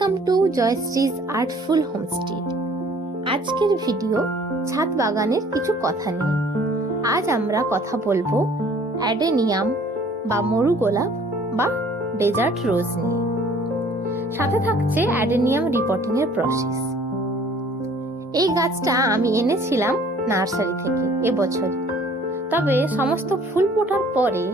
to Joyshree's artful homestay. আজকের video ছাদ বাগানের কিছু কথা নিয়ে। আজ আমরা কথা বলবো অ্যাডেনিয়াম বা মরু গোলাপ বা ডেজার্ট রোজ নিয়ে। সাথে থাকছে অ্যাডেনিয়াম রিপোর্টিং এর প্রসেস। এই গাছটা আমি এনেছিলাম নার্সারি থেকে এবছর, তবে সমস্ত ফুল ফোটার পরে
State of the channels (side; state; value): both; normal; correlation 0.55